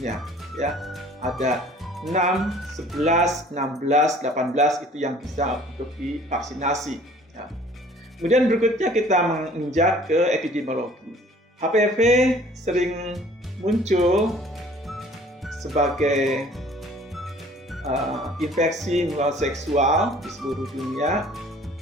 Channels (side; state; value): both; normal; correlation 0.52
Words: ya. Ada 6, 11, 16, 18 itu yang bisa untuk divaksinasi, ya. Kemudian berikutnya kita menginjak ke epidemiologi. HPV sering muncul sebagai infeksi menular seksual di seluruh dunia.